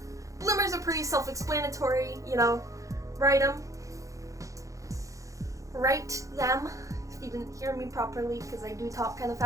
Bloomers are pretty self-explanatory, write them. Write them, if you didn't hear me properly, because I do talk kind of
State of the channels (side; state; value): left; late; 0.16 ms